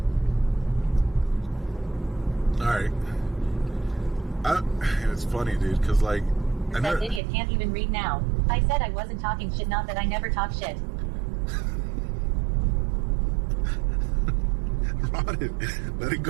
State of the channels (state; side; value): drops out; left; at 7.2 s